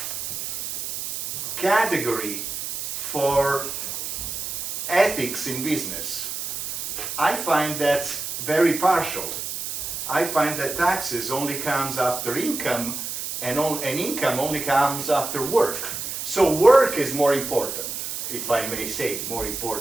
category for ethics in business. I find that's very partial. I find that taxes only comes after income, and income only comes after work. So work is more important, if I may say, more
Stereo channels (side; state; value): right; noise; hiss, 5 dB below the sound